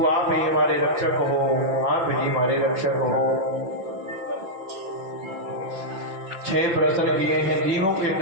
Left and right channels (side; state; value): left; late; 6.0 ms